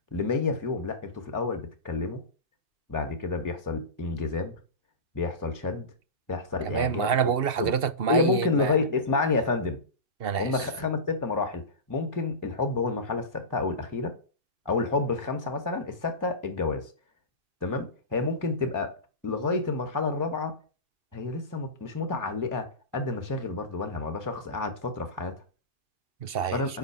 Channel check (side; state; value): left; late; 2.7 ms